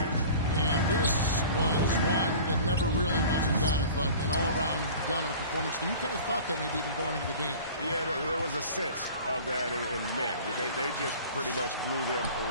And this was one that never really was in doubt, but an all-around dominant performance. And you kind of thought that maybe even going into the game. Yeah, there was a sense of that in men. They just pretty much blew them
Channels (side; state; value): both; inverted; correlation -0.41